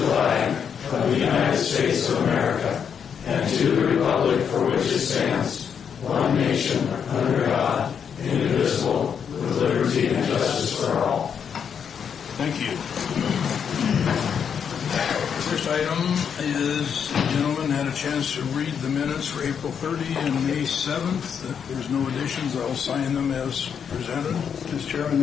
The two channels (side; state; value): right; quieter; 7.4 dB